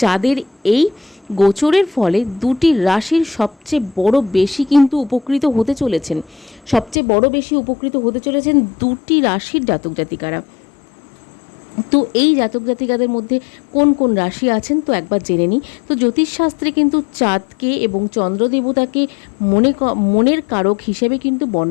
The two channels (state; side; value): drops out; right; at 7.0 s